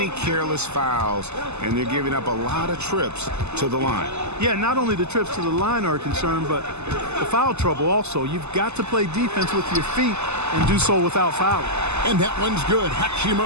careless fouls, and they're giving up a lot of trips to the line. Yeah, not only the trips to the line are a concern, but the foul trouble also. You've got to play defense with your feet and do so without fouling. And that one's good.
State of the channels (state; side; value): late; left; 0.81 ms